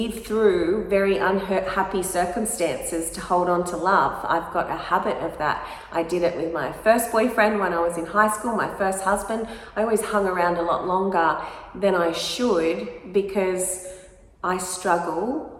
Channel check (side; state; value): both; identical; correlation 1.00